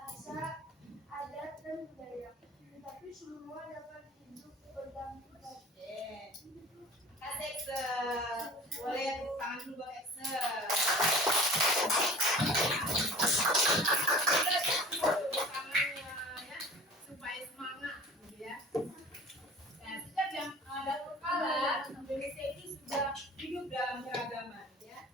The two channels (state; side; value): normal; both; correlation 0.42